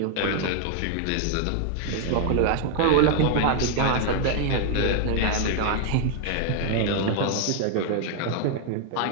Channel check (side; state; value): both; different; correlation 0.00